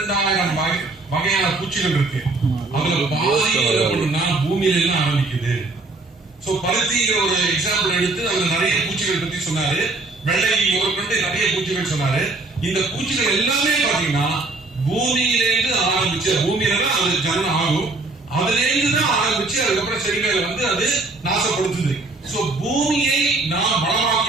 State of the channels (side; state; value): left; quieter; 3.3 dB